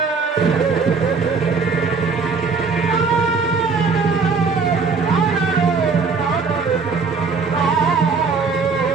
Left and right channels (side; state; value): left; quieter; 4.7 dB